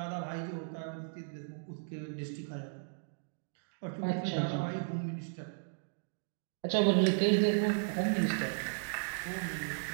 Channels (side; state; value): left; silent; digital silence